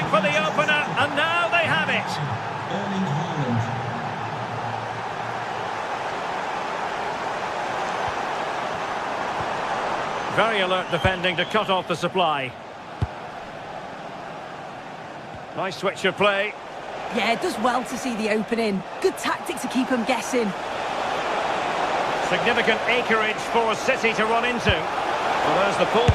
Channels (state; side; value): identical; both; correlation 1.00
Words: for the opener, and now they have it. Erling Haaland. Very alert defending to cut off the supply. Nice switch of play. Yeah, it does well to see the opening. Good tactic to keep him guessing. Significant acreage for City to run into. Well, there's the